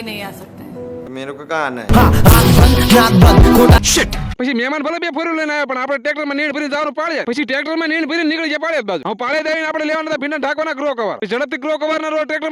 नहीं आ सकते हैं। मेरे को कहाँ आना है? પછી મહેમાન ભલે બે ફોરવ્હીલર લઈને આવ્યા પણ આપણે ટ્રેક્ટરમાં નીણ ભરીને જવાનું પાડ્યા. પછી ટ્રેક્ટરમાં નીણ ભરીને નીકળી ગયા પાડ્યા બાજુ. હું પાડે દઈને આપણે લેવાના હતા ભીંડા ઢાંકવાના ગ્રો કવર. ઝડપથી ગ્રો કવર ના રોડ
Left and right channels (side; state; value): both; identical; correlation 1.00